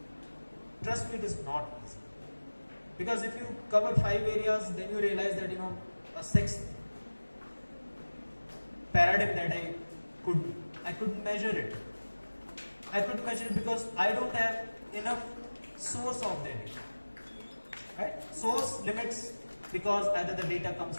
Trust me, it is not easy. Because if you cover 5 areas, then you realize that a 6th paradigm that I couldn't measure it. I couldn't measure it because I don't have enough source of the data. Right? Source limits, because either the data comes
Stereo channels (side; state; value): both; inverted; correlation -1.00